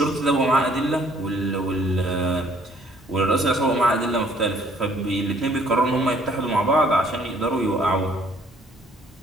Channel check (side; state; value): both; normal; correlation 0.60